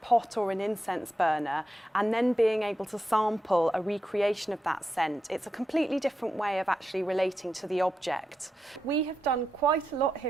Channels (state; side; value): normal; both; correlation 0.87